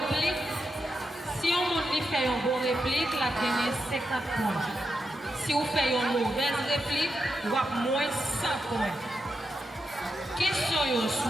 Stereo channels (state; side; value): normal; both; correlation 0.86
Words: Si on fait une bonne réplique, la gagne 50 points. Si on fait une mauvaise réplique, on va moins 100 points. Question